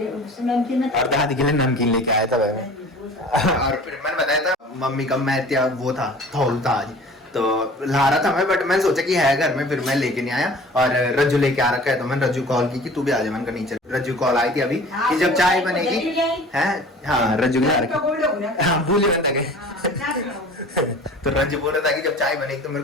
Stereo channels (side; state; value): both; normal; correlation 0.44